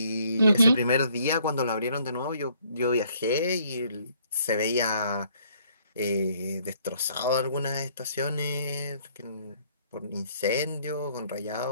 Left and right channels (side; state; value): both; inverted; correlation -0.64